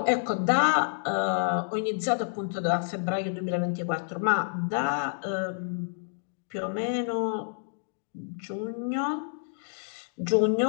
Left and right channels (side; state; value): right; silent; digital silence